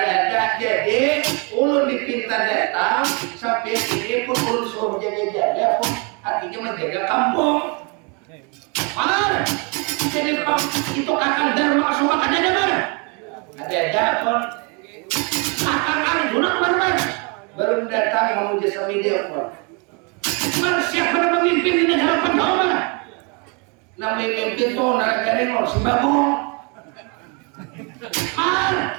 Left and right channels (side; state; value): left; quieter; 33.3 dB